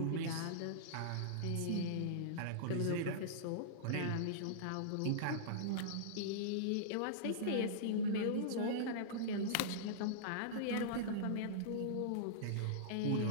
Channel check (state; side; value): different; both; correlation -0.03